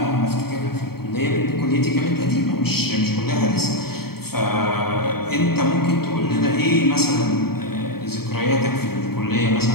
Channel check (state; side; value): late; right; 0.95 ms